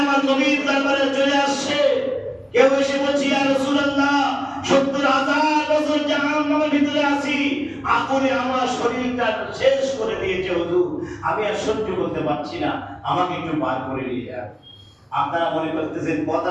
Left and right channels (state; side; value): identical; both; correlation 1.00